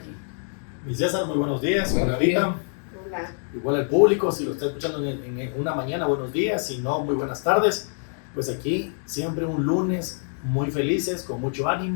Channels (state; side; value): silent; right; 62 dB below the other